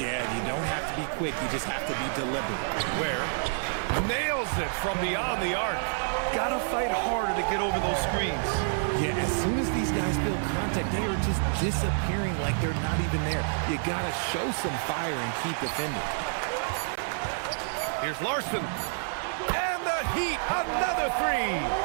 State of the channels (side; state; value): left; silent; 58 dB below the other